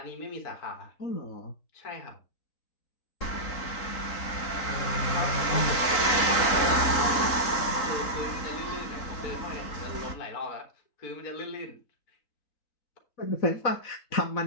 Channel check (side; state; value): right; late; 3.7 ms